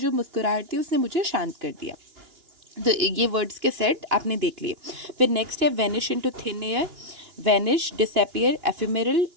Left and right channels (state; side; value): late; left; 2.9 ms